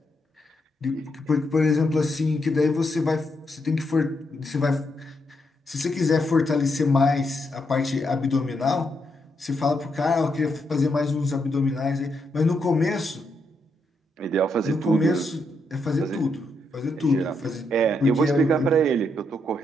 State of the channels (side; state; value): both; normal; correlation 0.80